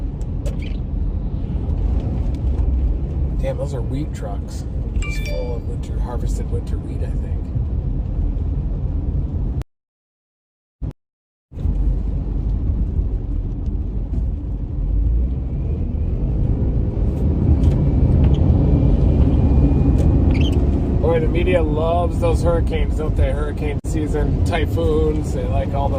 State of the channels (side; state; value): both; identical; correlation 1.00